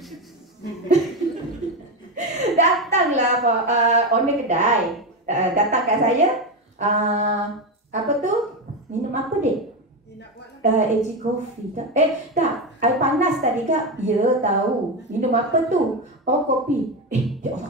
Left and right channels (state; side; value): normal; both; correlation 0.13